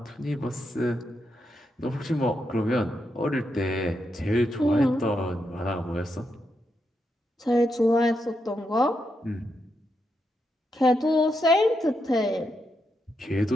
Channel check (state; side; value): normal; both; correlation 0.83